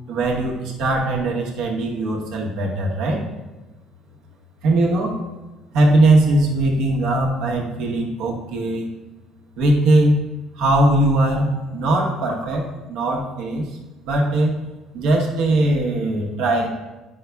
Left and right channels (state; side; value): normal; both; correlation 0.73